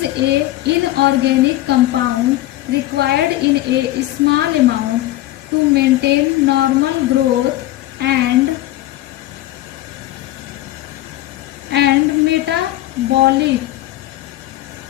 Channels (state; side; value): quieter; right; 15.7 dB